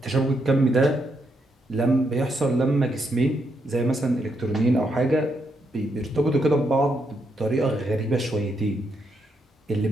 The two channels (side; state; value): both; normal; correlation 0.79